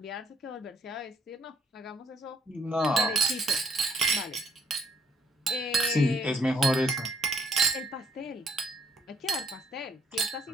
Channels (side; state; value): both; normal; correlation 0.67